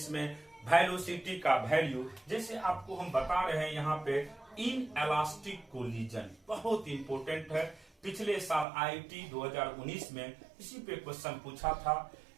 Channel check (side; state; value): left; drops out; at 8.7 s